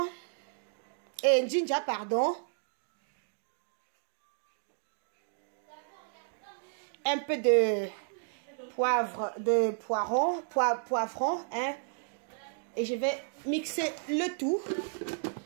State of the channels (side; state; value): left; silent; digital silence